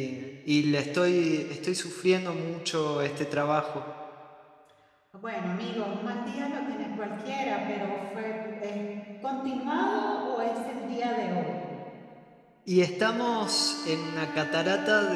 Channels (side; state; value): both; identical; correlation 1.00